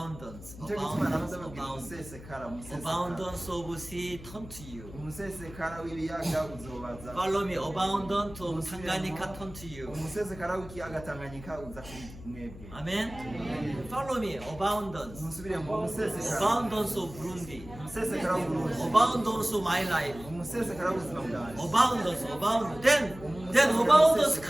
nicyo gituma namaze Abundance. babwira Abundance. umusesekara Abundance of sea turn to you. umusesekara w'ibiyaga uzobaza Follow me. Abundance of Tanganyika turn to you. umusesekara w'ikiyaga Tanganyika uza kuri mwebwe Amen. Follow me. Abundance. musubire mu umusesekara Abundance of Burundi. umusesekara w'Uburundi Abundance of my life. umusesekara w'ubuzima bwanjye Abundance. Then abundance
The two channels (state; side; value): noise; left; hum, 15 dB below the sound